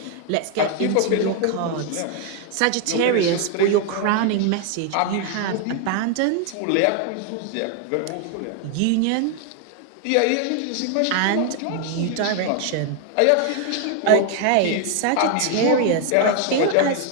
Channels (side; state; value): both; different; correlation 0.00